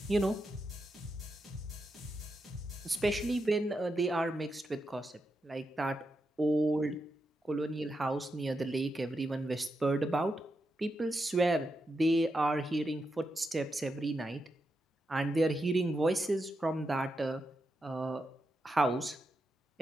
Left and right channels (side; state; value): both; normal; correlation 0.86